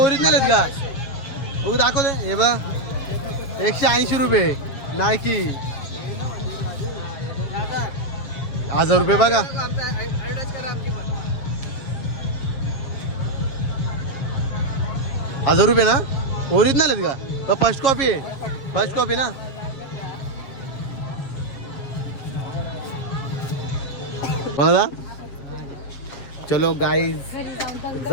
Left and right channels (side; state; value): right; late; 7.4 ms